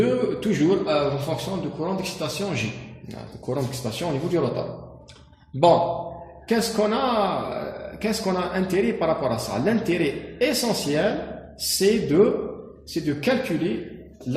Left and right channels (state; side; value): identical; both; correlation 1.00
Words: fonction du courant d'excitation J. Le courant d'excitation au niveau du rotor. Bon, qu'est-ce qu'on a intérêt par rapport à ça? L'intérêt essentiel, c'est de calculer